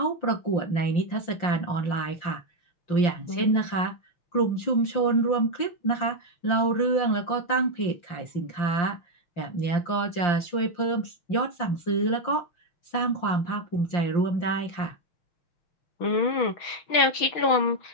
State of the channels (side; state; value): right; late; 5.7 ms